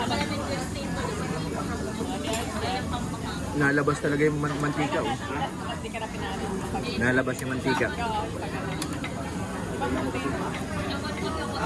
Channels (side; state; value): both; identical; correlation 1.00